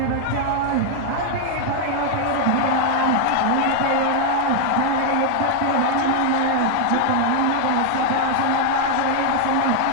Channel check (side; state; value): both; different; correlation 0.00